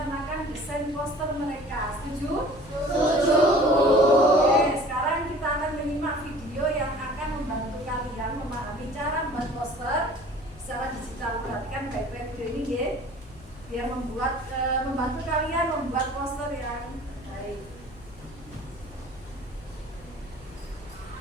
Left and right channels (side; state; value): left; noise; hum, 21 dB below the sound